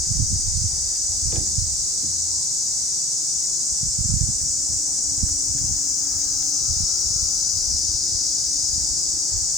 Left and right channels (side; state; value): both; normal; correlation 0.41